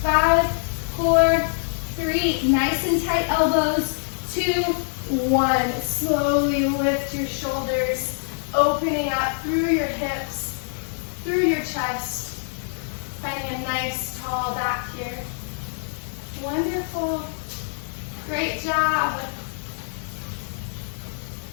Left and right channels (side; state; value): right; silent; 62 dB below the other